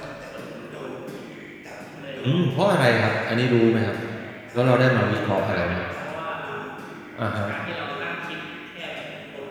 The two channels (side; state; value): both; identical; correlation 1.00